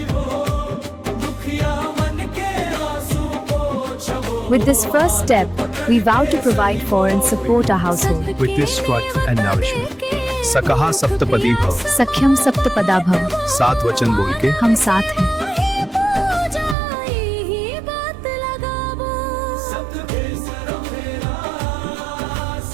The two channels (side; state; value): left; drops out; at 16.8 s